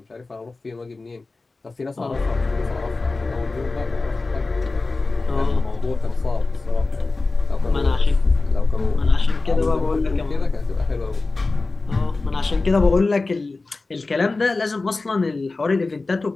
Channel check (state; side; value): quieter; right; 3.5 dB